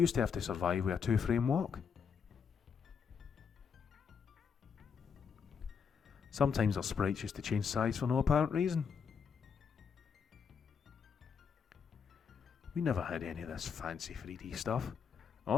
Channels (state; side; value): quieter; right; 6.4 dB